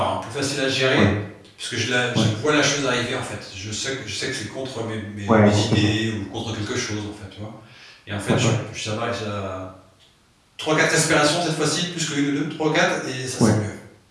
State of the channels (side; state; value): both; identical; correlation 1.00